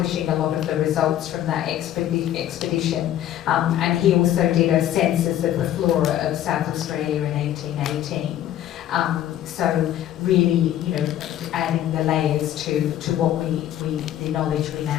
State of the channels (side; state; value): right; quieter; 11.9 dB